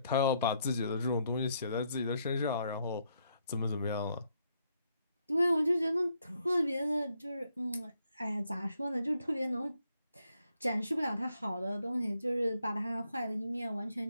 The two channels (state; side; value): inverted; both; correlation -0.75